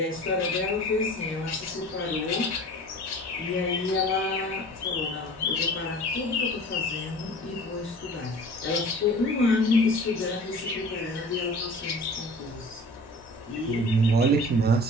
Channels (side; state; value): both; normal; correlation 0.43